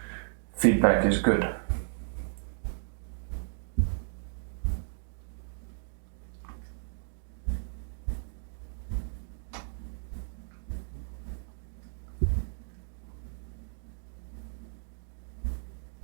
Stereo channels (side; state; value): left; silent; digital silence